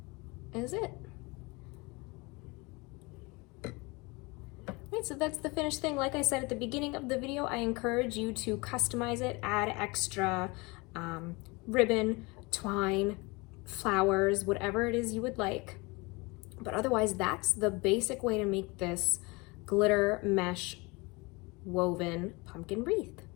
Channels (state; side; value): quieter; right; 26.1 dB